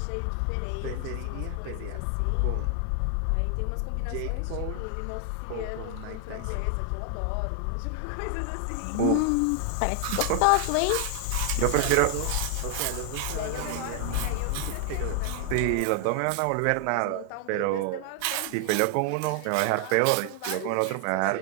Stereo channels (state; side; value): different; both; correlation 0.00